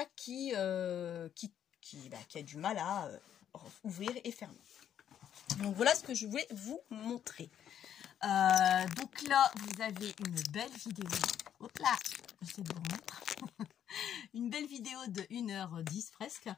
qu'il a du mal à ouvrir et fermer. Donc voilà ce que je voulais vous montrer. Donc là, vous avez une belle vidéo. Hop là, j'essaie de vous remettre. Une belle vidéo de 1h10 presque.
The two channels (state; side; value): quieter; right; 9.7 dB